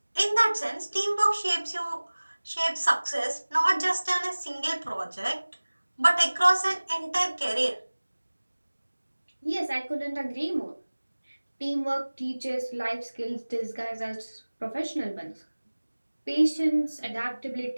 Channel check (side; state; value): both; inverted; correlation -1.00